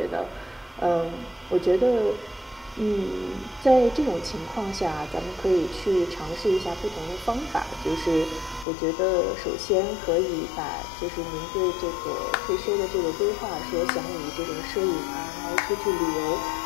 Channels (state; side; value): drops out; right; at 8.7 s